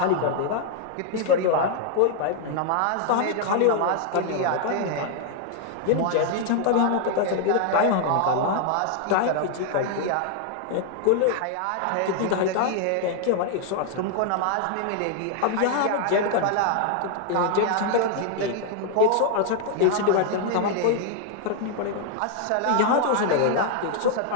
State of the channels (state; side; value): different; both; correlation 0.00